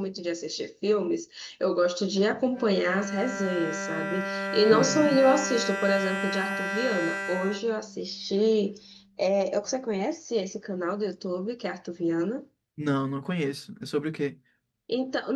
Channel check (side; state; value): both; identical; correlation 1.00